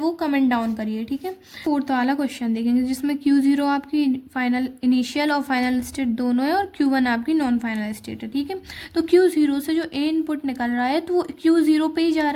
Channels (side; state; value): both; identical; correlation 1.00